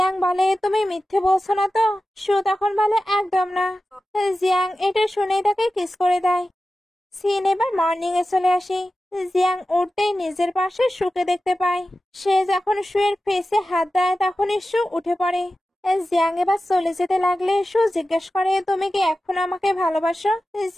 বলে, তুমি মিথ্যে বলছো না তো? সু তখন বলে, একদম না। জিয়াং এটা শুনেই তাকে কিস করে দেয়। সিন এবার মর্নিং এ চলে আসি। জিয়াং উঠতেই নিজের পাশে সুকে দেখতে পায়। সে যখন সুয়ের ফেসে হাত দেয় তখনই সু উঠে পড়ে। জিয়াং এবার চলে যেতে লাগলে সু জিজ্ঞেস করে, তুমি কি এখন আমাকে ভালোবাসো?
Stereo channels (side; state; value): both; normal; correlation 0.94